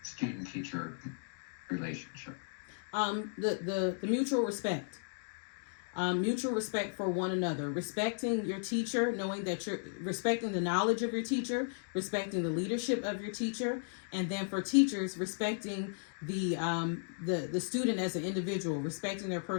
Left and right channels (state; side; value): silent; right; digital silence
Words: student-teacher relationship? The mutual respect. Mutual respect for one another, respecting your teacher, knowing that you're respecting the knowledge of your teacher, respecting the leadership of your teacher, and then for teachers, respecting the student as an individual, respecting their